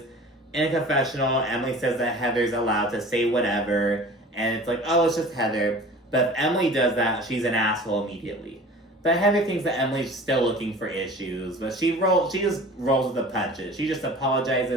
In a confessional, Emily says that Heather's allowed to say whatever, and it's like, oh, it's just Heather. But if Emily does that, she's an asshole immediately. But Heather thinks that Emily's still looking for issues, but she just rolls with the punches. She just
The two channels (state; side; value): normal; both; correlation 0.42